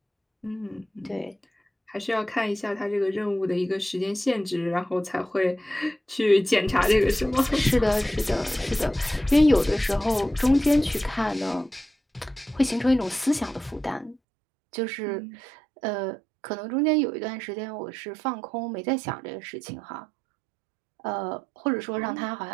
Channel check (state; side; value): drops out; left; at 14.2 s